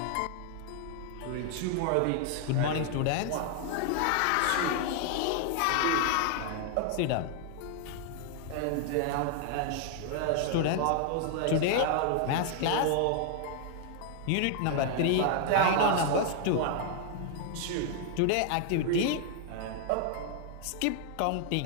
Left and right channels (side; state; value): both; different; correlation 0.00